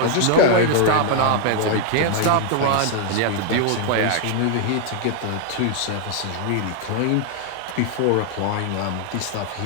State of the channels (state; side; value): different; both; correlation 0.00